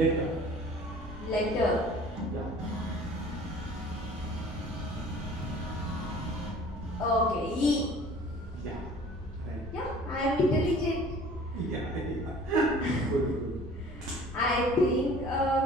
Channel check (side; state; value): both; normal; correlation 0.48